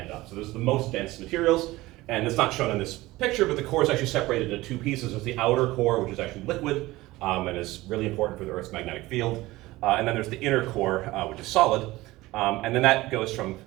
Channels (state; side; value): quieter; left; 18.8 dB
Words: up. So those are the most dense materials, and it's not shown in this picture, but the core is actually separated into two pieces. There's the outer core, which is actually liquid, and is really important for the Earth's magnetic field. And then there's the inner core, which is solid. And then that goes from